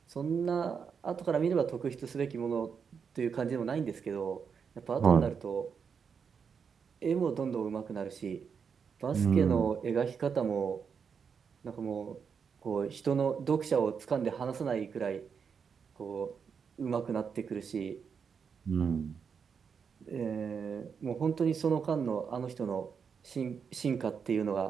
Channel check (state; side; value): quieter; left; 6.4 dB